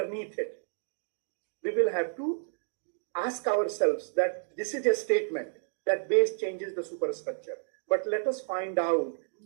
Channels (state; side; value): silent; left; digital silence